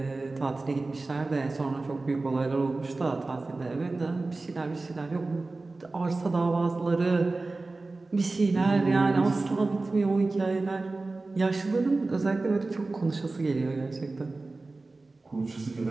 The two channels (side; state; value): left; quieter; 3.4 dB